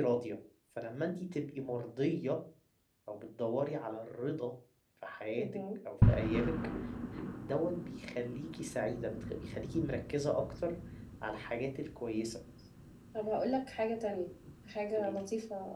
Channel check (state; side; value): identical; both; correlation 1.00